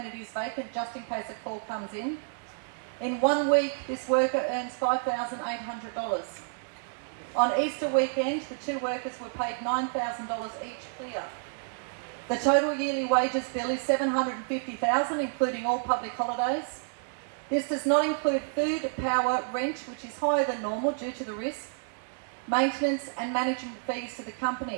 it is vacant, just in case a call comes in. In 1 week, this worker earns $5,800. On Easter weekend, the 2 workers were paid $9,000 each clear. The total yearly wages bill is $750,000, including all public holidays. This does not include food, power, rent, which is higher than normal due to the risk, maintenance and management fees to the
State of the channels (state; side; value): silent; left; digital silence